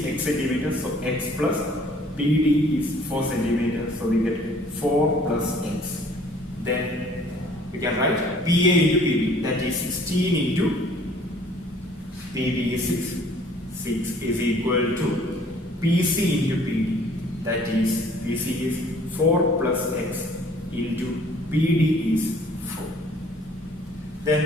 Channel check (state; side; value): normal; both; correlation 0.55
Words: x centimeter. So x plus PD is 4 centimeter. So we get 4 plus x. Then we can write PA into PB, that is 16 into PB is 6. 6 is equal to PC into PD, that is PC is 4 plus x into PD is 4.